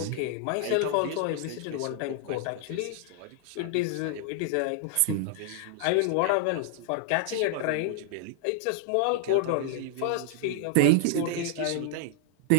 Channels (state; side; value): different; both; correlation -0.01